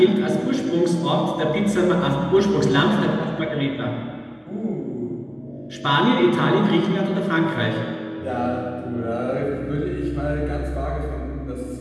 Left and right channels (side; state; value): both; identical; correlation 1.00